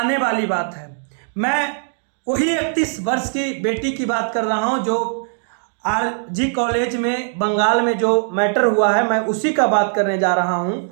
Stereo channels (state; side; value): silent; left; digital silence